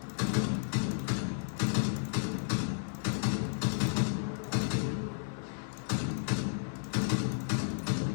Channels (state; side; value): silent; right; digital silence